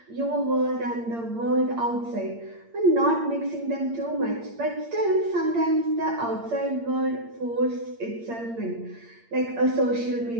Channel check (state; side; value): late; left; 8.7 ms